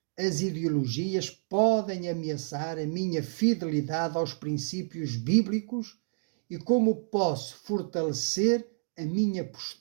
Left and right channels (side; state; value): left; silent; digital silence